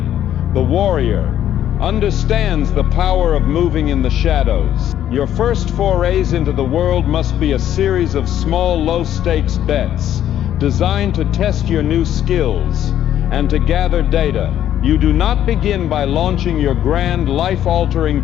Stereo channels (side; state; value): right; quieter; 11.2 dB